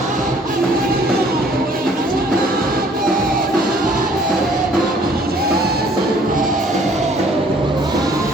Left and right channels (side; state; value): both; normal; correlation 0.58